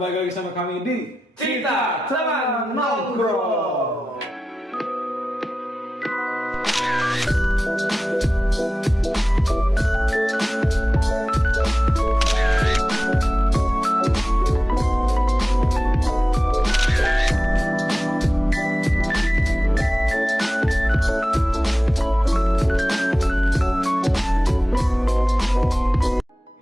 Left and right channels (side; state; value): both; normal; correlation 0.95